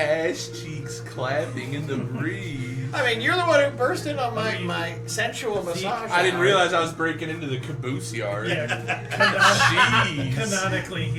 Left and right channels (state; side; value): identical; both; correlation 1.00